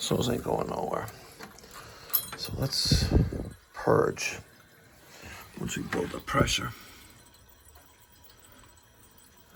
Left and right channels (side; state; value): both; identical; correlation 1.00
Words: hose ain't going nowhere. So let's purge once we build up pressure.